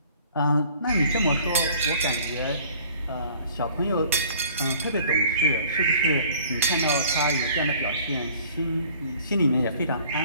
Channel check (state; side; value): inverted; both; correlation -0.53